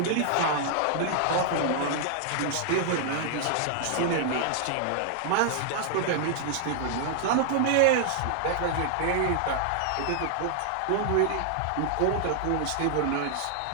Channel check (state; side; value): different; both; correlation -0.01